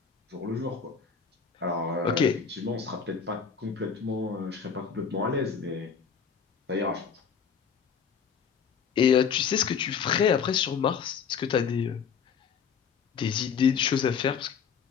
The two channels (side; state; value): right; quieter; 6.6 dB